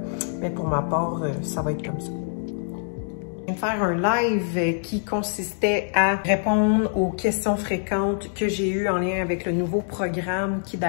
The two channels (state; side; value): silent; right; digital silence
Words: Mais pour ma part, ça va être comme ça. Je viens de faire un live qui consistait à répondre aux questions fréquentes que j'ai eues en lien avec le nouveau programme qui